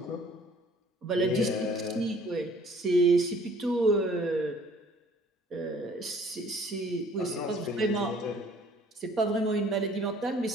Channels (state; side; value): normal; both; correlation 0.55